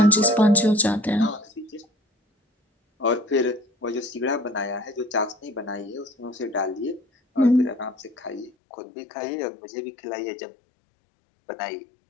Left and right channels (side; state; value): right; drops out; at 8.5 s